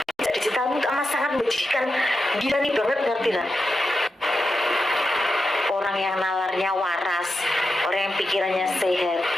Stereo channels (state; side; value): normal; both; correlation 0.89